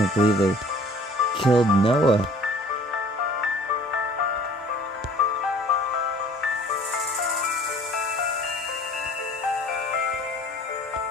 believe they killed Noah.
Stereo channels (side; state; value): both; normal; correlation 0.50